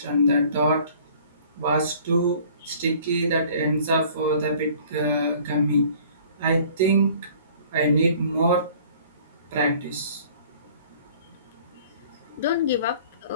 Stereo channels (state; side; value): inverted; both; correlation -0.52